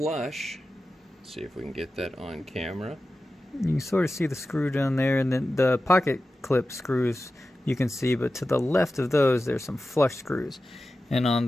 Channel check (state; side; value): normal; both; correlation 0.93